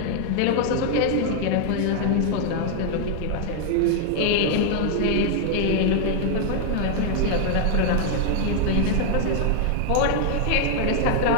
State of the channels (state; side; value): different; both; correlation 0.00